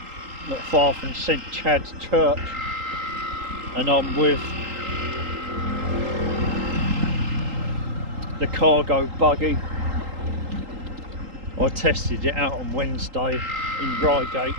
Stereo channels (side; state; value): left; late; 3.8 ms